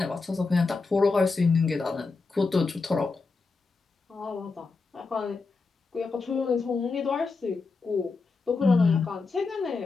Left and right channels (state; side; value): quieter; right; 4.2 dB